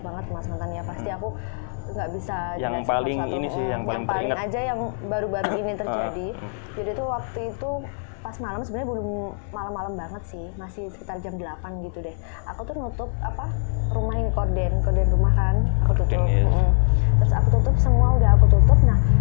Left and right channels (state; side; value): silent; right; 63 dB below the other